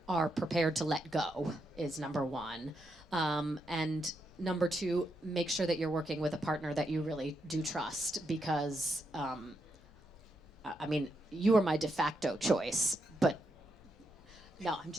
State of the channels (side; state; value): both; normal; correlation 0.82